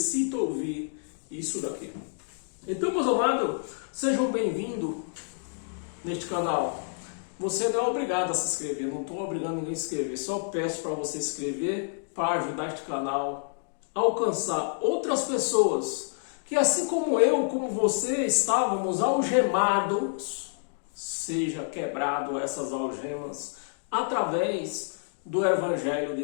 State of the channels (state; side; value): silent; right; digital silence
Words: ouvir isso daqui. Então, meus amados, sejam bem-vindos neste canal. Você não é obrigado a se inscrever, não estou obrigando ninguém a se inscrever, só peço para você se inscrever para ajudar este canal a alcançar outras pessoas que, assim como eu, como você, estávamos algemados, seja quebrado essas algemas através do Evangelho